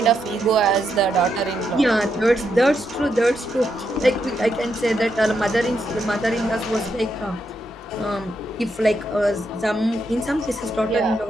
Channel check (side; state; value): both; normal; correlation 0.81